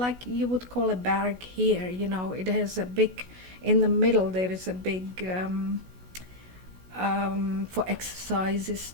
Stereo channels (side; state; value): left; late; 16 ms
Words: you would call a barrack here. It has a big. In the middle, there is a big for exercises.